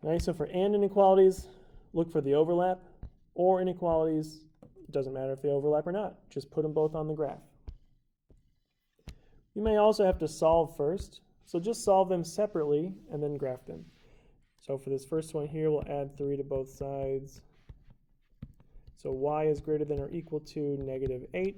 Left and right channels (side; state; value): both; identical; correlation 1.00